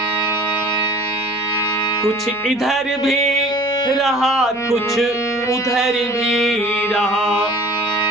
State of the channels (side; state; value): right; noise; hum, 27 dB below the sound